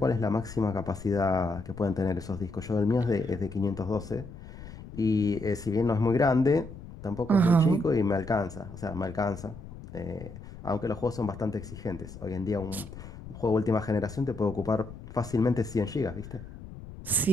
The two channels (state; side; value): noise; left; rumble, 14 dB below the sound